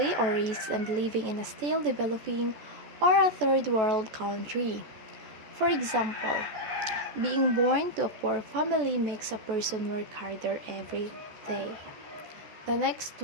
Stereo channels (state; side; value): late; left; 14 ms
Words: or risk and living in a still developing or a third world country. For example, being born to a poor family makes a person work harder every day. The next